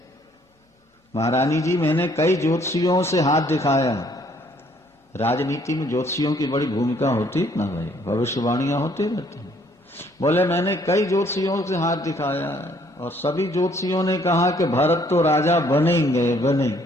महारानी जी मैंने कई ज्योतिषियों से हाथ दिखाया। राजनीति में ज्योतिषियों की बड़ी भूमिका होती है ना भाई, भविष्यवाणियां होती रहती हैं। बोले मैंने कई ज्योतिषियों से हाथ दिखाया और सभी ज्योतिषियों ने कहा कि भरत तो राजा बनेंगे बने,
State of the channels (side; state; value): both; normal; correlation 0.64